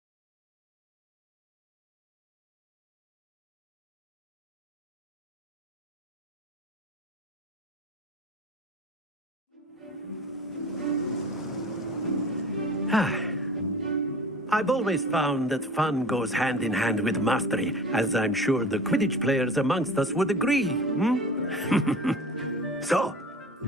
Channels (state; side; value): normal; both; correlation 0.39